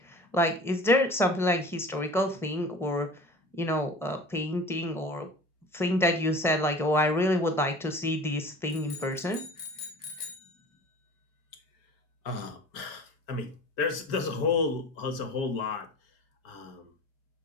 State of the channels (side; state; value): both; normal; correlation 0.41